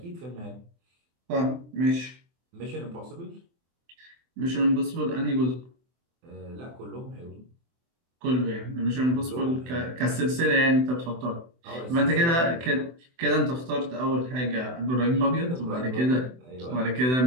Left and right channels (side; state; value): left; late; 24 ms